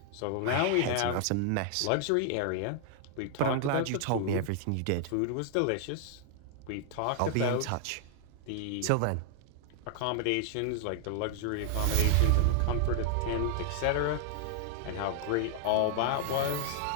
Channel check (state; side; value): different; both; correlation 0.00